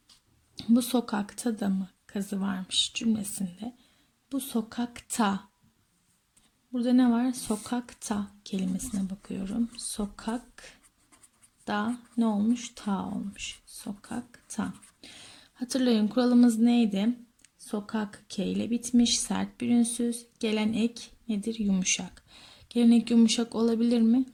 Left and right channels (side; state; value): both; identical; correlation 1.00